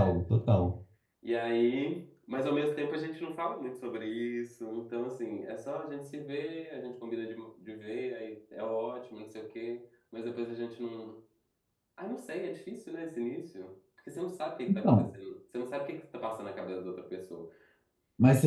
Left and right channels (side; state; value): both; identical; correlation 1.00